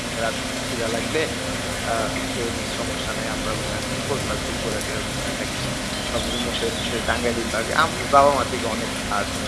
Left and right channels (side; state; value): both; identical; correlation 1.00